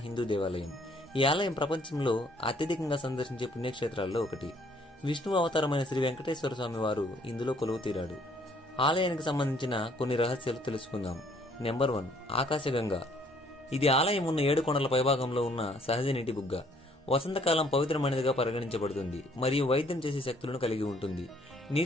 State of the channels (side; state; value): both; normal; correlation 0.63